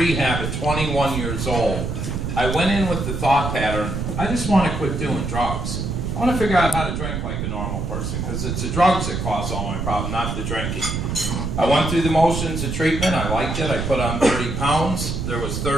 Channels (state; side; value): noise; right; rumble, 3 dB below the sound